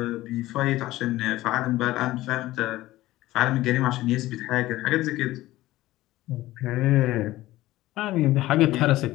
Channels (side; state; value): right; quieter; 16.7 dB